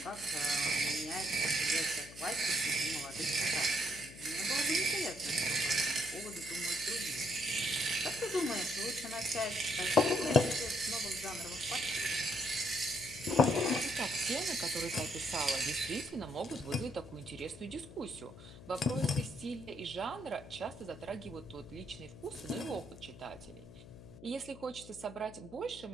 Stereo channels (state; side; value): noise; left; hum, 17 dB below the sound